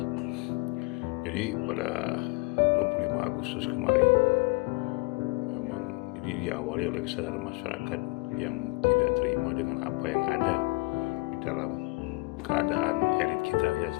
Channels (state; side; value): quieter; right; 25.0 dB